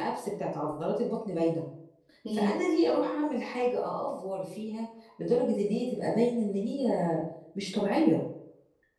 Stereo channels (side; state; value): both; identical; correlation 1.00